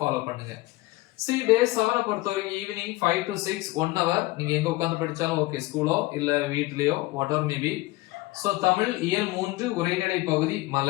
ஃபாலோ பண்ணுங்க. See டே 7 பொறுத்தவரைக்கும் ஈவினிங் 5 to 6 1 hour நீங்க எங்க உட்கார்ந்து படிச்சாலும் ஓகே, ஸ்கூலோ இல்ல வீட்லயோ whatever maybe. சோ தமிழ் இயல் 3 உரைநடை பகுதி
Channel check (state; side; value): quieter; right; 20.1 dB